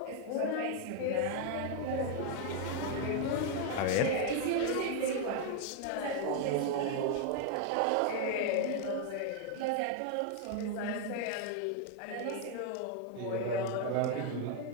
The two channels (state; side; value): different; both; correlation 0.00